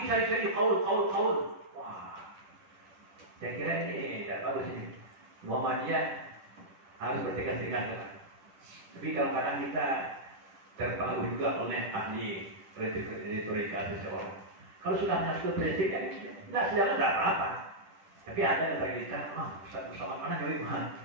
cari-cari kaul. Wah, saya kira ini tidak bagus ini. Muhammadiyah harus bertegas-tegas. Tapi kadang-kadang kita terpengaruh juga oleh ahli retorika seseorang. Kalau sudah masuk prinsip, ya tidak sejalan, tidak apa-apa. Tapi ada yang bagi kita, bersama mana jauh mana?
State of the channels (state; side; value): late; left; 10 ms